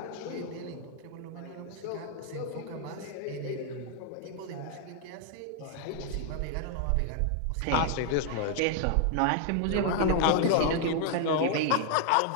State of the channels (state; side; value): different; both; correlation 0.00